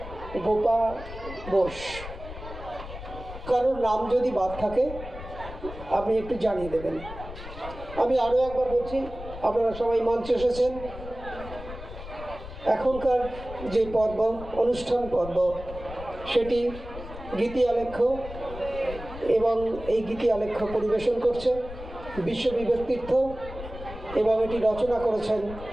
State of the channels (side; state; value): left; noise; rumble, 12 dB below the sound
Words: গোপা বোস। কারোর নাম যদি বাদ থাকে আপনি একটু জানিয়ে দেবেন। আমি আরও একবার বলছি, আপনারা সবাই মঞ্চে এসেছেন। এখনকার যে পর্ব, অনুষ্ঠান পর্ব, সেটি গীতি আলেখ্য, এবং এই গীতি আলেখ্য পরিবেশন করছে বিশ্ববিবেক তীর্থ, এবং এটি রচনা করেছেন